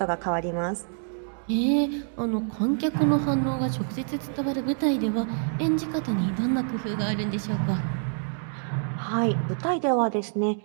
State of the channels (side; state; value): left; silent; 60 dB below the other